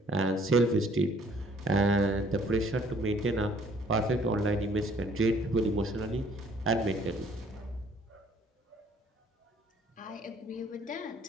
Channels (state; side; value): normal; both; correlation 0.60